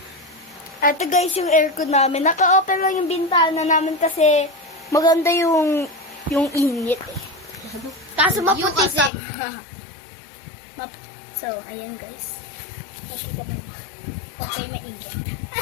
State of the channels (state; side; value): drops out; right; at 9.1 s